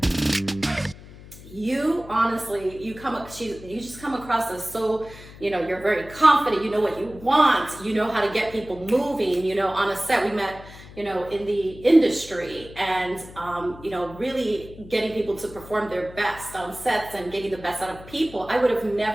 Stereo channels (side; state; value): left; noise; hum, 18 dB below the sound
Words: You honestly, you just come across as so, you're very confident, you know what you want, you know how to get people moving, on a set. We met, in the industry and, really getting people to perform their best on sets and getting the best out of people. I would have